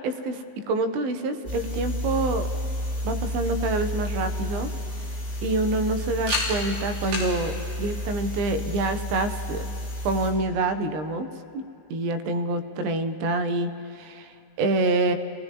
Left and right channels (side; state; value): left; late; 19 ms